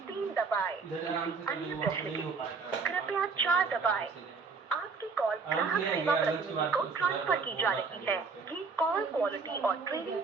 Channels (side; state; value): left; quieter; 4.7 dB